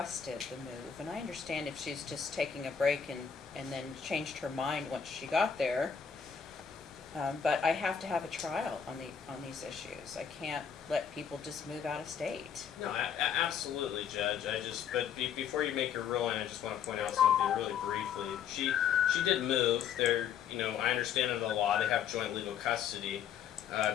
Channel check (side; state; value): right; quieter; 7.8 dB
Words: the move, and I understand if she's just taking a break and then changed her mind once she got there, but I have to have a trial on these issues. I can't let people just move out of state. No, absolutely, Judge. Before you make your ruling, I just want to point out something really briefly. She did move. I understand under the law they have joint legal custody.